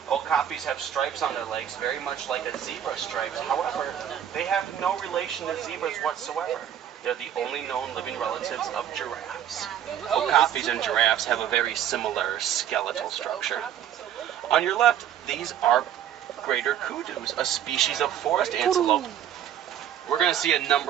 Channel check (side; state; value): left; quieter; 10.2 dB